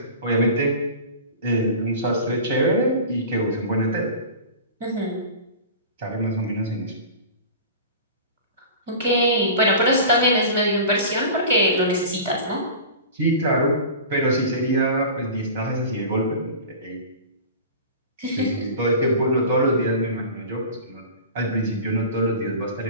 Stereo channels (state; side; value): inverted; both; correlation -0.36